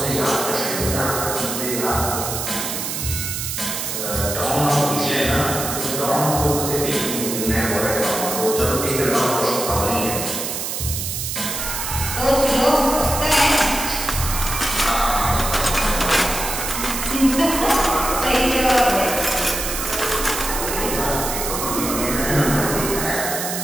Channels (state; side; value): noise; right; hiss, 4 dB below the sound